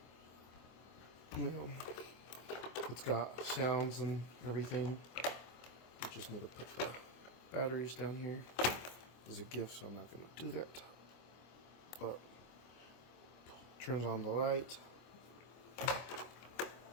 it's got sounds and everything. You just need to put the batteries down here. As a gift, so I'm not going to do that. But turns on the light.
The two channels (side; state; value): right; late; 24 ms